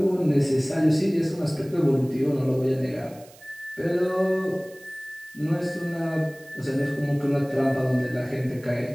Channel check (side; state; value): right; noise; hiss, 24 dB below the sound